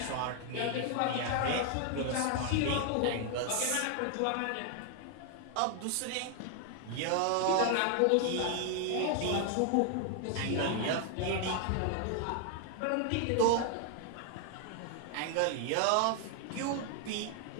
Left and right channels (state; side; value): different; both; correlation 0.00